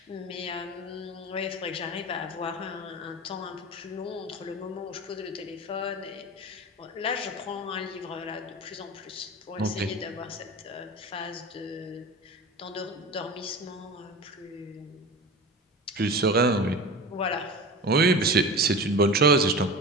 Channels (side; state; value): both; normal; correlation 0.31